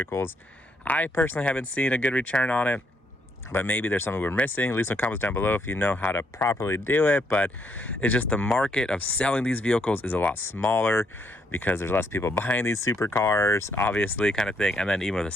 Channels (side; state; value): both; normal; correlation 0.73